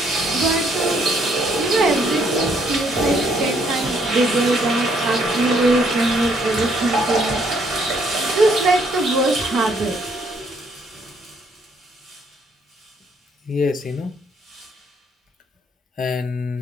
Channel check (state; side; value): normal; both; correlation 0.68